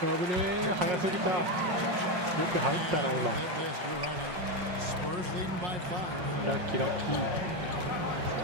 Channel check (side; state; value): left; late; 5.5 ms